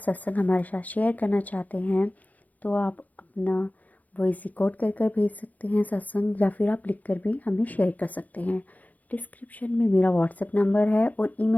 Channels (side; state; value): right; late; 0.078 ms